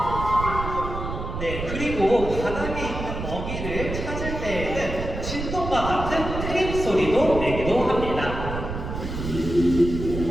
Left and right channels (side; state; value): right; noise; rumble, 6 dB below the sound